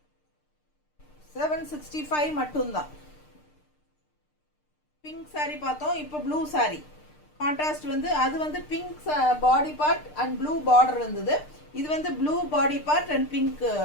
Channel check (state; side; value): late; right; 6.6 ms